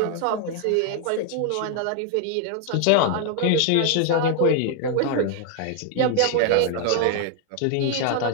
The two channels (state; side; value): different; both; correlation 0.00